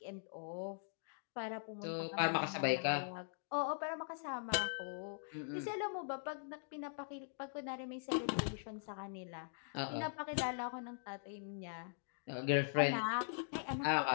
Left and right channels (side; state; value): right; silent; digital silence